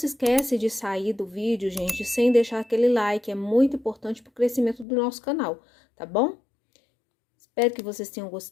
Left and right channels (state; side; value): drops out; right; at 4.9 s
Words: esquece de sair do vídeo, gente, sem deixar aquele like, é muito importante para o crescimento do nosso canal, tá bom? Espero que vocês tenham